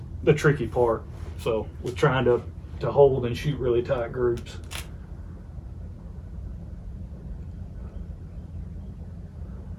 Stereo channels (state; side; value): identical; both; correlation 1.00